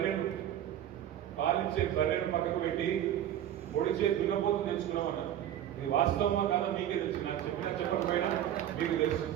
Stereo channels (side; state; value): left; quieter; 11.2 dB